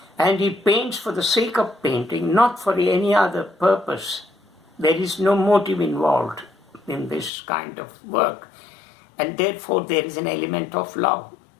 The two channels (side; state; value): right; drops out; at 7.3 s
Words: And he paints for the sake of painting, not for any other purpose. There is no motive involved in this kind of work. And therefore there is an element of love.